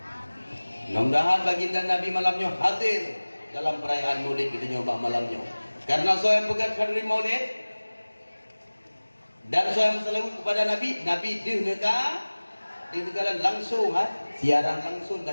Mudah-mudahan baginda Nabi malamnya hadir dalam perayaan Maulid kita nyoba malamnya. Karena saya pegang hadiri Maulid dan saya bersalawat kepada Nabi, Nabi negara langsung, siaran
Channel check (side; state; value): both; inverted; correlation -1.00